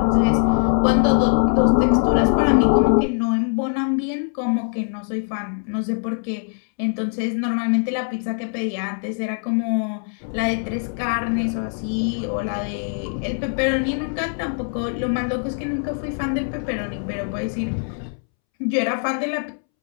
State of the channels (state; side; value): silent; right; 64 dB below the other